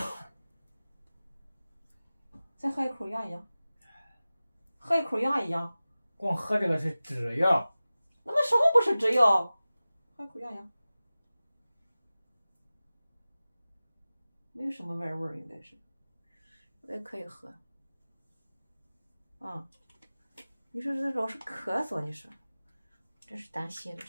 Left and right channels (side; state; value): both; inverted; correlation -0.97